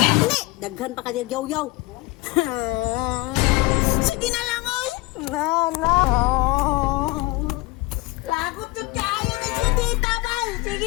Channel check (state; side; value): quieter; right; 22.3 dB